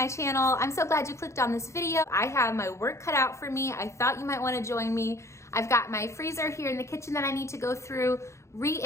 channel. I'm so glad you clicked on this video. I have my work cut out for me. I thought you might want to join me. I've got my freezer here in the kitchen that I need to go through,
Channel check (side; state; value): right; late; 0.14 ms